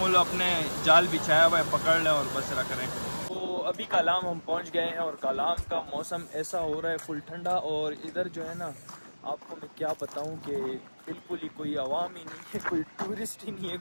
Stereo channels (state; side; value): inverted; both; correlation -1.00